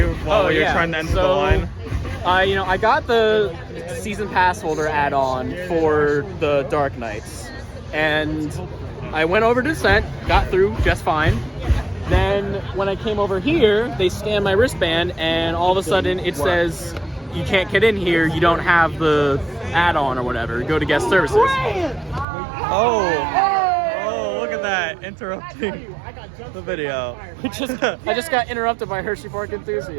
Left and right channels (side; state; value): left; drops out; at 22.2 s